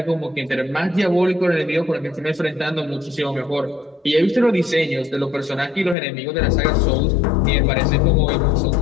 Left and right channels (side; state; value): right; drops out; at 6.0 s